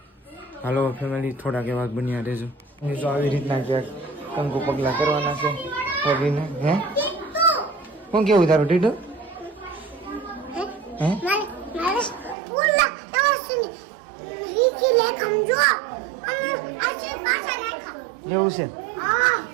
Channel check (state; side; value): drops out; left; at 12.4 s